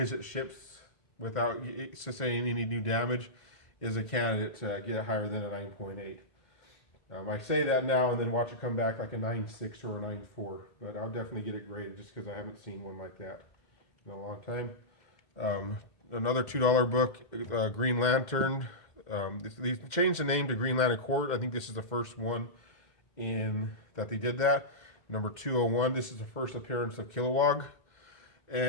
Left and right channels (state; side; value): late; right; 2.0 ms